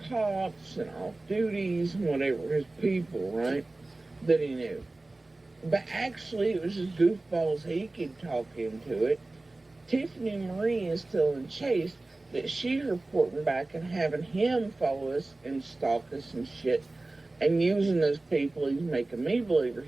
cops and off duties and whatever, his people, right, that he knew. But actually, it was just goofballs he could talk into it. Tiffany Marie is telling Chase that she's reporting back and having him follow us and stalk us and shit and using those people he's making me believe are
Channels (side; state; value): left; quieter; 3.0 dB